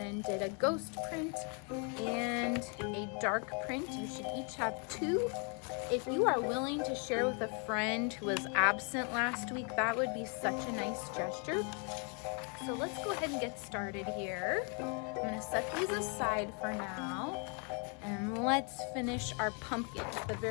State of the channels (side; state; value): right; quieter; 37.0 dB